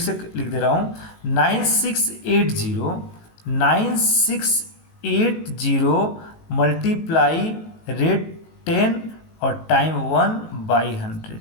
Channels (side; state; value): right; late; 18 ms